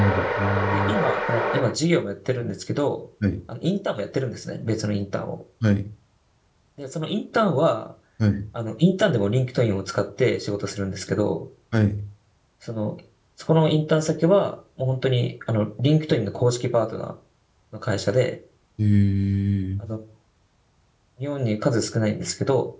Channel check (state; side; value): identical; both; correlation 1.00